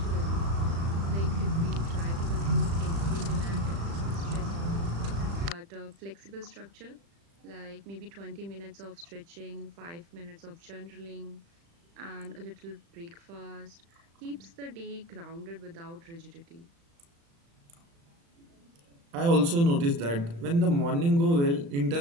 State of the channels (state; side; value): late; left; 35 ms